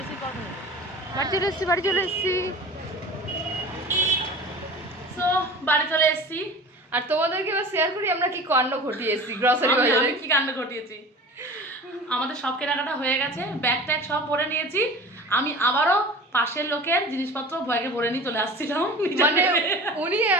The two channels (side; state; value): both; normal; correlation 0.38